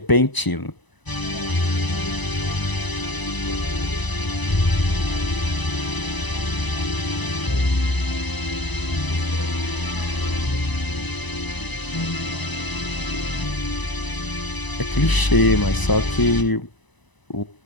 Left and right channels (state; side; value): late; right; 1.0 ms